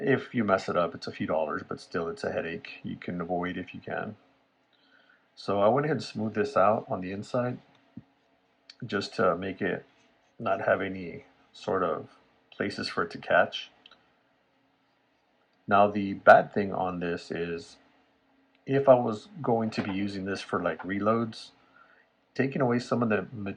you mess it up, it's a few dollars, but still it's a headache you can avoid if you can. So I went ahead and smoothed this out on the inside just to make it not have any sort of places for it to catch. Now the bad thing on this is if I was going to be using this for like reloads, taking away some of the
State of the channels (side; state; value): both; identical; correlation 1.00